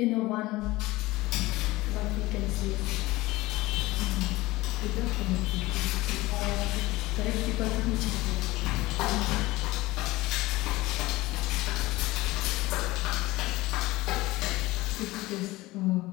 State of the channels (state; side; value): quieter; right; 19.5 dB